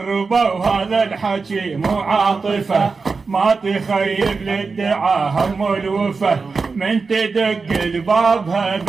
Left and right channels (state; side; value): quieter; left; 4.5 dB